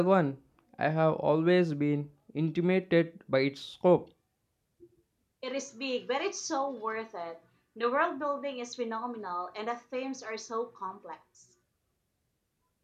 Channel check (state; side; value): identical; both; correlation 1.00